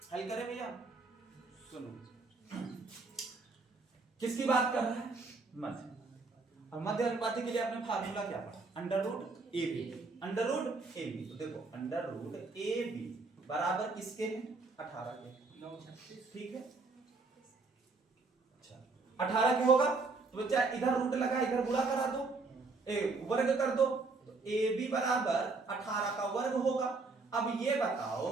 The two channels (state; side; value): quieter; left; 3.9 dB